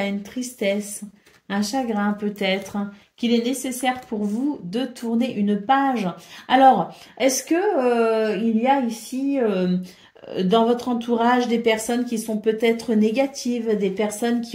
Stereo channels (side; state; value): both; identical; correlation 1.00